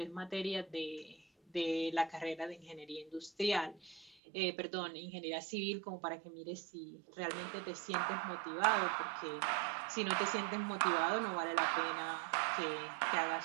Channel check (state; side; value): drops out; left; at 4.2 s